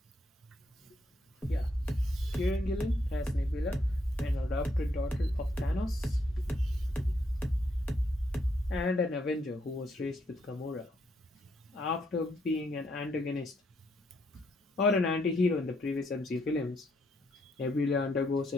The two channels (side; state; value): both; normal; correlation 0.75